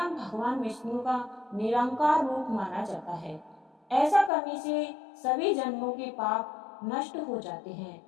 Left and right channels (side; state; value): right; drops out; at 4.3 s